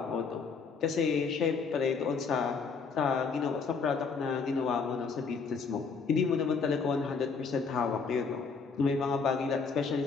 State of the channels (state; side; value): quieter; right; 5.2 dB